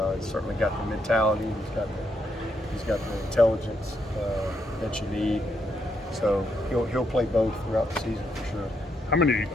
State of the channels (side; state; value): both; normal; correlation 0.78